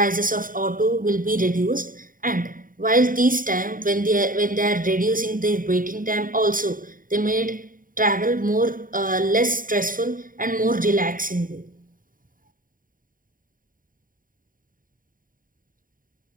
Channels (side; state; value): left; late; 0.40 ms